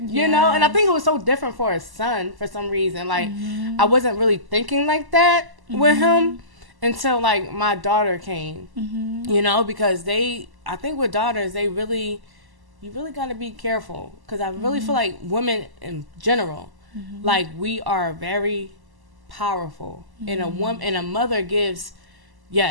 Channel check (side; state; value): left; late; 1.0 ms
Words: you know? And I think it was so different for a son for some reason. Like, I wasn't really thinking like that with him until, like, my daughter came, you know? Because I think with daughters, you really got to be careful. Because I really feel like women in general, like, we are very powerful. And a mother gives